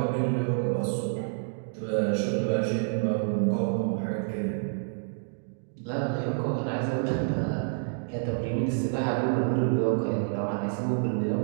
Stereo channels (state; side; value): silent; left; digital silence